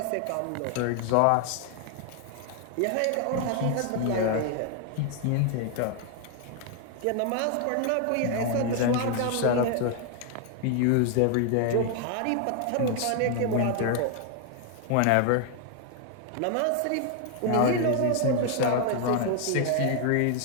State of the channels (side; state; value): both; different; correlation 0.00